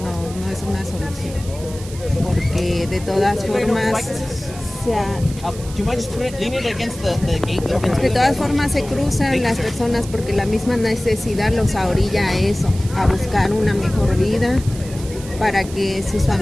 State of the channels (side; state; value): right; noise; hiss, 16 dB below the sound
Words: es una solución, porque de todas formas se cruzan las personas porque la misma necesidad los orilla a eso, a buscar una mejor vida para que sus